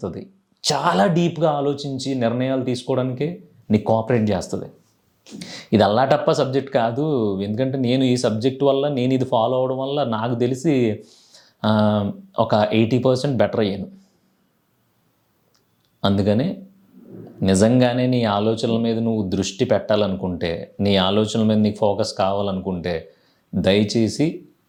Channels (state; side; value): identical; both; correlation 1.00